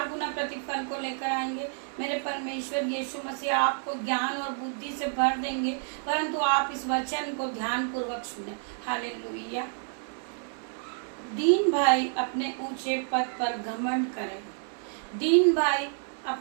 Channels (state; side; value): silent; left; 58 dB below the other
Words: गुना प्रतिफल को लेकर आएंगे। मेरे परमेश्वर यीशु मसीह आपको ज्ञान और बुद्धि से भर देंगे, परंतु आप इस वचन को ध्यान पूर्वक सुने। हालेलुया। दीन भाई अपने ऊंचे पद पर घमंड करें, दीन भाई